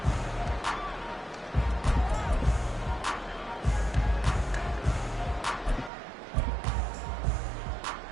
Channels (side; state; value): left; drops out; at 5.9 s